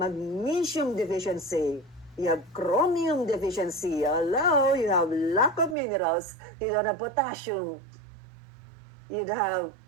deficiency. You have chromium deficiency. Hello, you have lack of minerals. You don't have potassium. You have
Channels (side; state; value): left; drops out; at 5.8 s